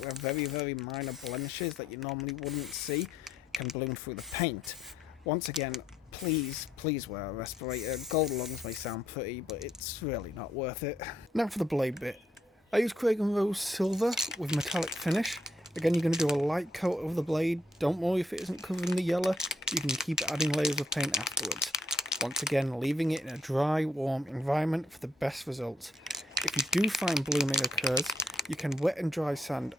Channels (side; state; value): both; normal; correlation 0.72